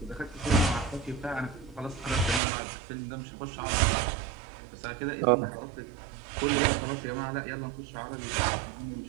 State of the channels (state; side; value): drops out; left; at 2.4 s